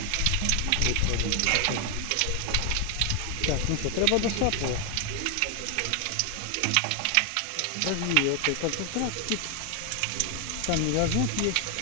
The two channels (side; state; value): both; different; correlation 0.01